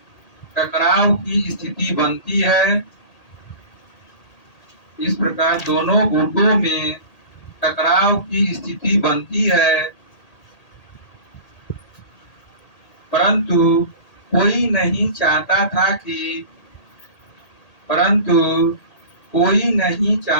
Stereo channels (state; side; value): late; right; 1.8 ms